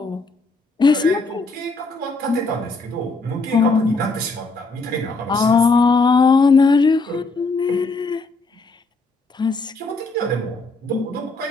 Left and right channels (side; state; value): right; quieter; 3.4 dB